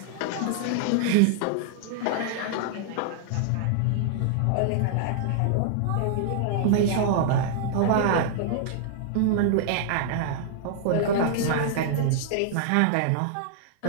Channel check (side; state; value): both; different; correlation -0.01